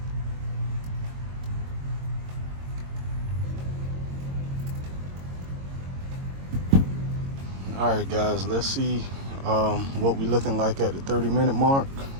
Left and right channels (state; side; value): late; left; 22 ms